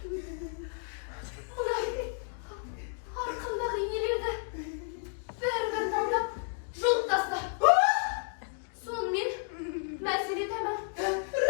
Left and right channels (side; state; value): right; silent; 57 dB below the other